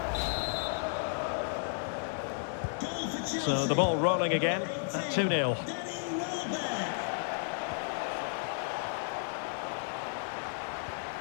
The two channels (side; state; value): right; silent; digital silence